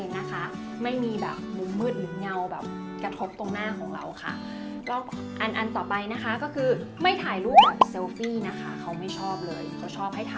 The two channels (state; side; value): identical; both; correlation 1.00